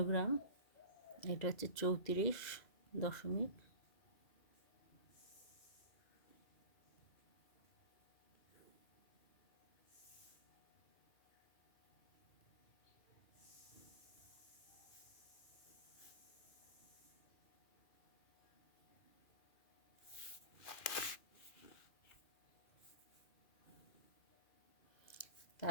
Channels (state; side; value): late; right; 2.4 ms